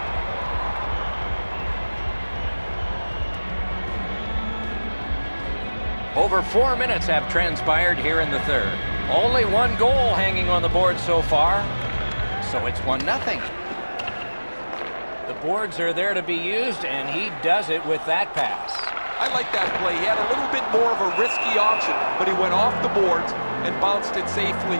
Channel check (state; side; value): inverted; both; correlation -1.00